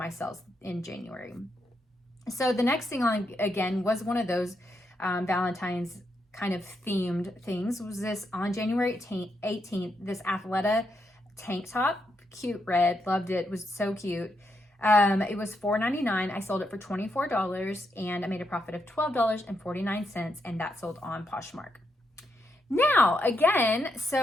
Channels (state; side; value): normal; both; correlation 0.81